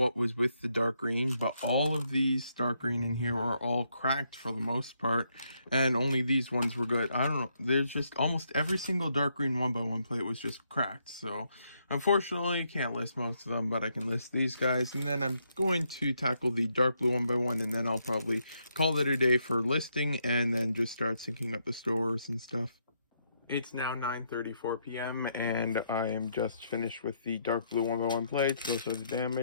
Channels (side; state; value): both; inverted; correlation -0.76